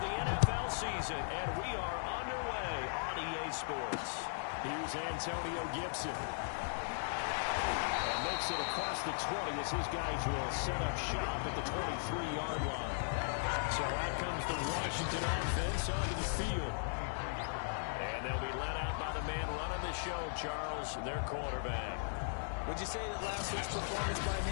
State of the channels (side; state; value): right; silent; 53 dB below the other